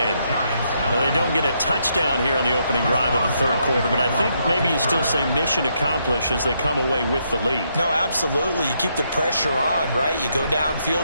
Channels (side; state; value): both; inverted; correlation -0.76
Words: The they don't get a touchdown here on the opening drive of the third quarter, but I think maybe you still say mission accomplished as they come away with the lead. No, absolutely. You keep the pressure on, right? You go